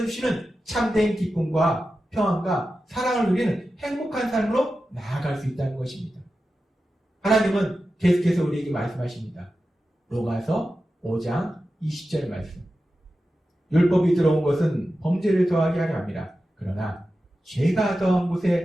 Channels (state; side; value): normal; both; correlation 0.92